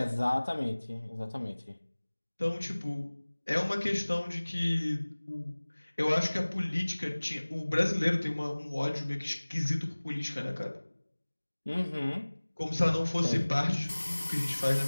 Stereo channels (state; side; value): inverted; both; correlation -1.00